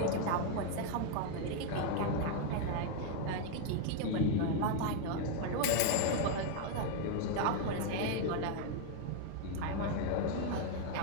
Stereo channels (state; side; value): different; both; correlation 0.01